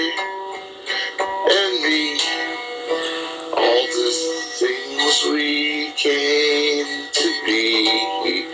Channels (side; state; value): both; identical; correlation 1.00